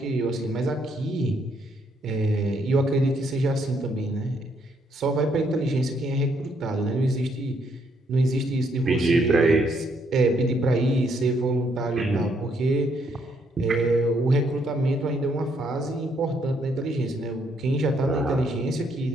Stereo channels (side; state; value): both; normal; correlation 0.72